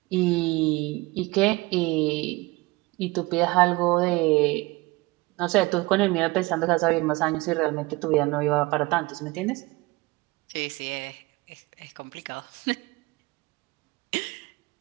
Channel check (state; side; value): quieter; left; 22.6 dB